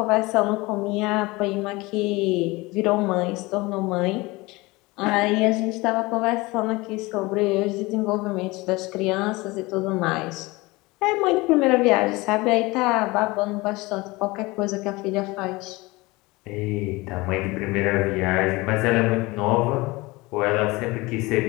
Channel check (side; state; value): right; quieter; 22.6 dB